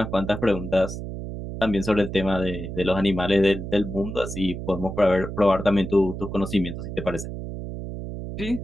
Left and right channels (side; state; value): right; noise; hum, 7 dB below the sound